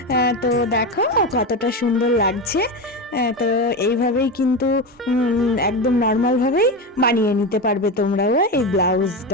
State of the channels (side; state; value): both; normal; correlation 0.18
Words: তো দেখো কতটা সুন্দর লাগছে। তো এইভাবেই কিন্তু একদম নর্মালভাবেই বানিয়ে নিতে পারবে তোমরাও এই